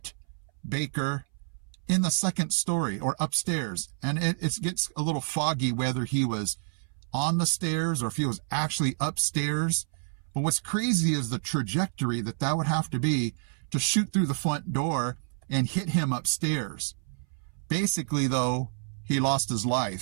Baker in the second story or upstairs. And it gets a little foggy whether he was on the stairs or if he was actually upstairs. But what's crazy is the trajectory that would have to be to shoot through the front door and hit him upstairs. Basically, though, he lost his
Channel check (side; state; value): left; silent; 59 dB below the other